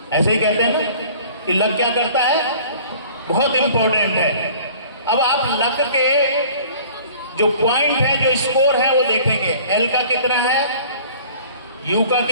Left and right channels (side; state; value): both; inverted; correlation -0.49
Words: ऐसे ही कहते हैं ना कि लग क्या करता है, बहुत इंपॉर्टेंट है। अब आप लग के जो पॉइंट है, जो स्कोर है, वो देखेंगे। एल का कितना है, यू का